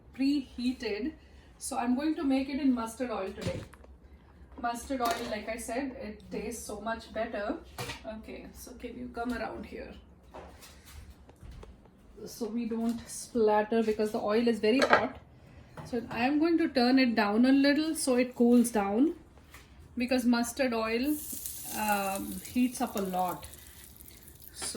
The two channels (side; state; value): both; identical; correlation 1.00